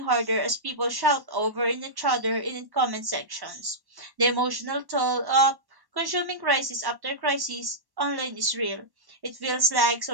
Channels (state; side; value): late; left; 1.1 ms